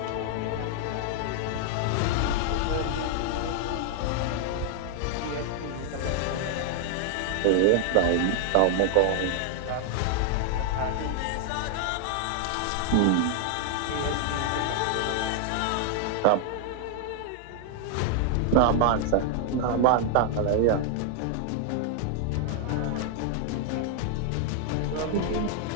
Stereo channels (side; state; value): both; different; correlation 0.00